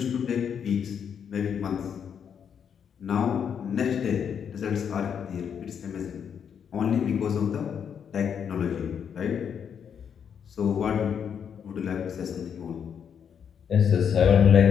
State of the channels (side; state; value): right; quieter; 7.7 dB